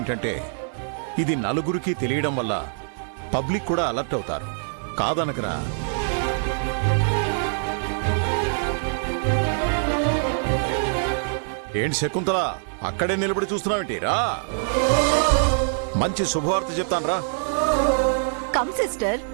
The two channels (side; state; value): left; silent; 63 dB below the other